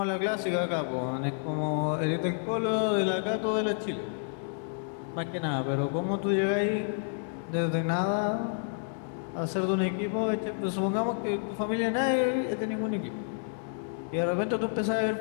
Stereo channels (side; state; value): right; silent; digital silence